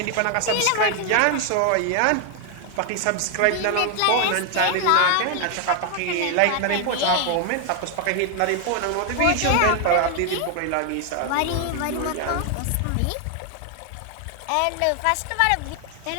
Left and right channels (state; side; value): different; both; correlation 0.01